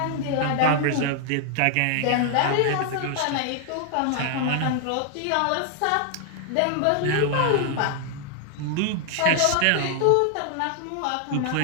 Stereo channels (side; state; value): both; different; correlation 0.00